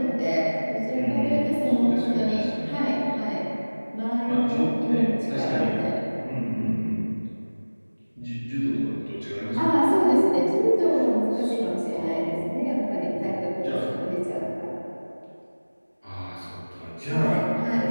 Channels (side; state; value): both; inverted; correlation -1.00